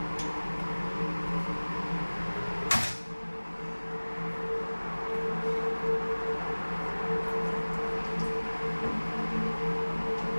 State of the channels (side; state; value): both; inverted; correlation -1.00